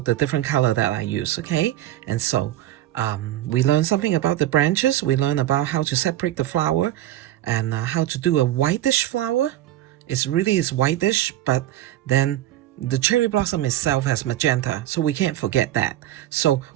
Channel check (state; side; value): quieter; left; 13.7 dB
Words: the different color that I use. Okay, and so we learn something about the branches. We learn about how to separate the flower, and how to do a whitish flower. It's whitish, but then the cherry blossom itself has magenta, so we can't forget that. So